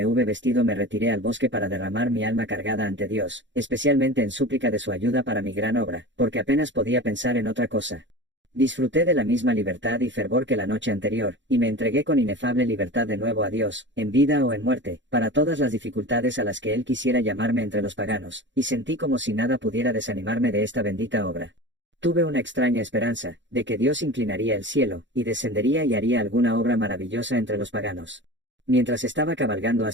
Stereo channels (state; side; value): late; left; 0.54 ms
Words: hube vestido me retiré al bosque para derramar mi alma cargada ante Dios, especialmente en súplica de su ayuda para mi gran obra, porque apenas podía pensar en otra cosa. Disfruté de la misma libertad y fervor que la noche anterior, y me entregué con inefable libertad de nuevo a Dios, en vida o en muerte, para todas las dificultades a las que Él quisiera llamarme entre los paganos, y sentí como si nada pudiera desanimarme de esta bendita obra. Tuve una extraña esperanza, de que Dios inclinaría el cielo, y descendería y haría alguna obra maravillosa entre los paganos. Mientras estaba cabalgando